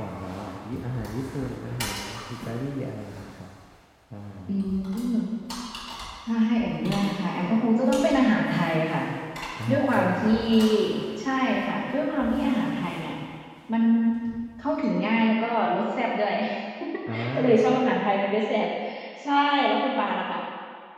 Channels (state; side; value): identical; both; correlation 1.00